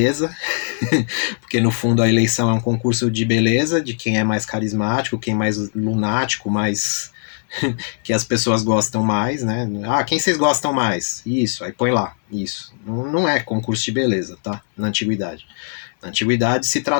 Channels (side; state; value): right; silent; 66 dB below the other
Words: porque no fundo a eleição é um concurso de beleza, de quem é mais carismático, quem é mais lunático, mais que as pessoas gostam mais, né? Ah, quem vocês gostam mais? Isso, aí põe lá, isso. Não é concurso de beleza, tá? Na antiguidade. Na antiguidade se